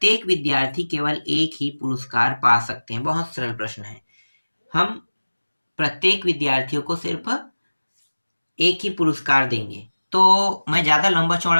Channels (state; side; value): inverted; both; correlation -1.00